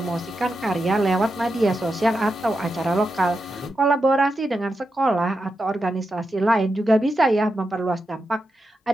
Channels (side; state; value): both; normal; correlation 0.88